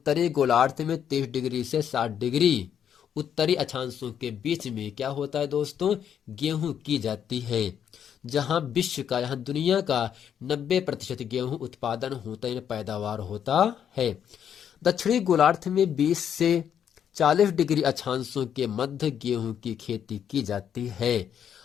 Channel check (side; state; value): right; quieter; 8.8 dB